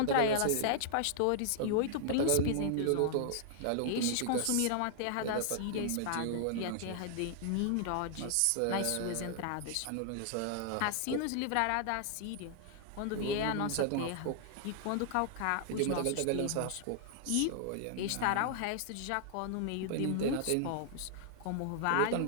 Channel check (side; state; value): both; different; correlation -0.01